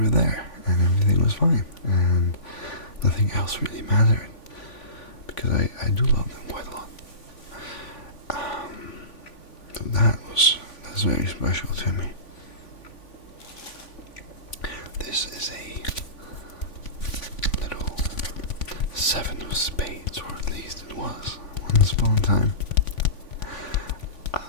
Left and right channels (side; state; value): right; late; 3.5 ms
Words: there and everything was fine and nothing else really mattered because I do love them quite a lot. So that's very special to me. This is a little seven of spades, or at least it was once upon a time.